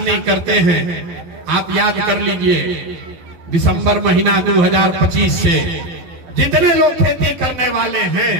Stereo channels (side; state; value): left; late; 12 ms